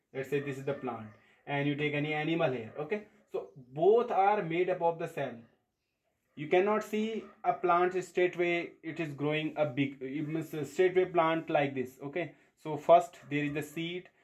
let's say this is the plant, and you take any animal here, okay, so both are made up of the cell. You cannot see a plant straightway it is growing a big, it means a straightway plant like this. Okay, so first there is the seed,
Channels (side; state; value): both; identical; correlation 1.00